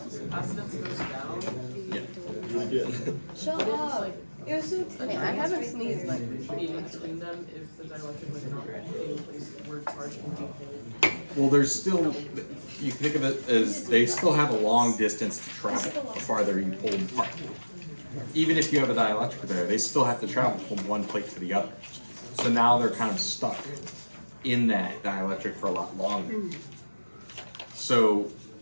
goes down, Shut up. You're so Hey, I haven't sneezed like be between them if the dielectric was not being placed where charge can be held. Well, there's still, you can think of it as they still have a long distance to travel the farther you pull them apart. Even if you have a dielectric there, they still have to travel from one plate to the other. So now they're kind of stuck in that dielectric for a lot longer. So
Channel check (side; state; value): both; inverted; correlation -1.00